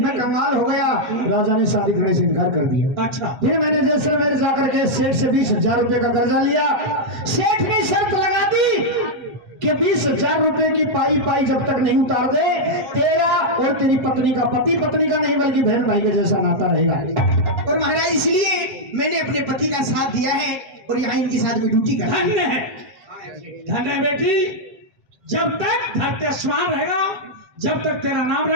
कंगाल हो गया। राजा ने शादी करने से इनकार कर दिया। अच्छा फिर मैंने जैसलमेर जाकर के सेठ से 20,000 रुपए का कर्जा लिया। सेठ ने शर्त लगा दी कि 20,000 रुपए की पाई पाई जब तक नहीं उतार दे, तेरा और तेरी पत्नी का, पति पत्नी का नहीं बल्कि बहन भाई के जैसा नाता रहेगा। और महाराज इसलिए मैंने अपने पति का साथ दिया है और यहाँ इनके साथ में ड्यूटी कर। धन्य है, धन्य है बेटी। जब तक धरती आसमान रहेगा, जब तक तेरा नाम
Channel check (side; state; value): left; late; 8.2 ms